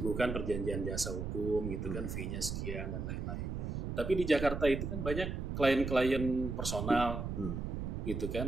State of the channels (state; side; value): noise; right; rumble, 4 dB below the sound